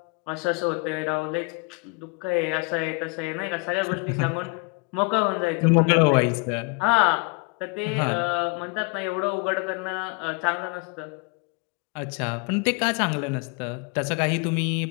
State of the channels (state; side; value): quieter; right; 31.1 dB